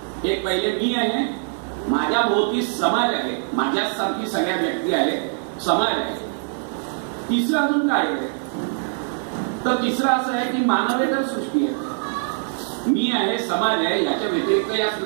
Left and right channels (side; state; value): left; silent; digital silence